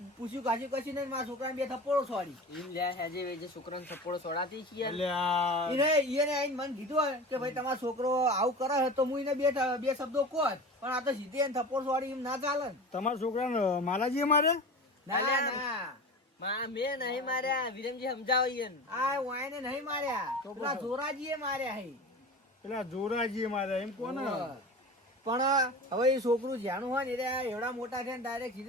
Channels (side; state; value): both; normal; correlation 0.32